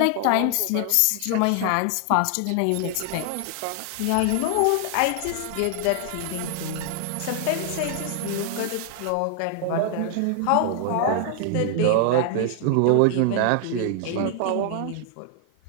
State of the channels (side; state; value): both; different; correlation 0.00